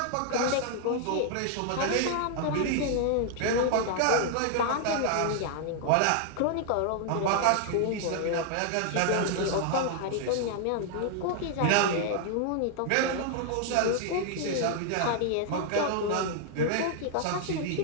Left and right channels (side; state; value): both; different; correlation 0.00